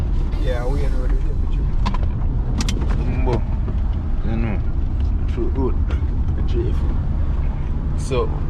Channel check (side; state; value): both; identical; correlation 1.00